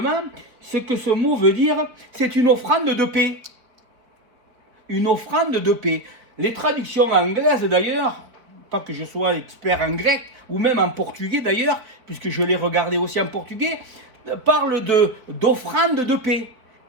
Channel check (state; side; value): late; left; 4.1 ms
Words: ce que ce mot veut dire, c'est une offrande de paix. Une offrande de paix. Les traductions anglaises d'ailleurs, pas que je sois expert en grec, ou même en portugais d'ailleurs, puisque je l'ai regardé aussi en portugais, parlent d'offrande de paix.